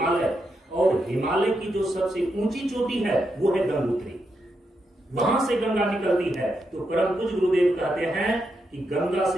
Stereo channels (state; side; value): normal; both; correlation 0.83